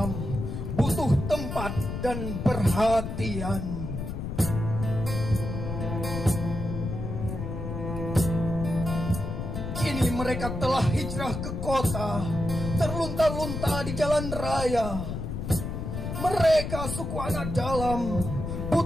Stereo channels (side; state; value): left; noise; rumble, 5 dB below the sound